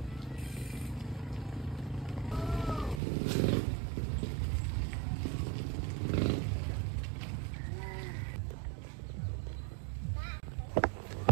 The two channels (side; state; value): left; drops out; at 3.0 s